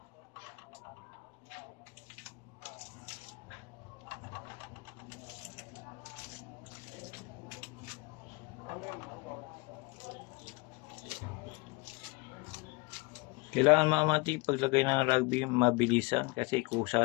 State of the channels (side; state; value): right; quieter; 25.1 dB